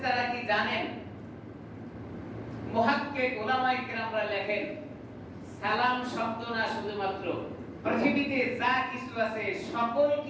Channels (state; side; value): identical; both; correlation 1.00